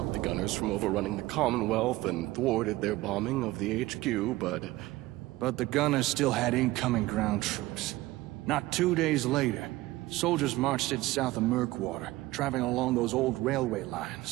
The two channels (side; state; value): left; quieter; 18.4 dB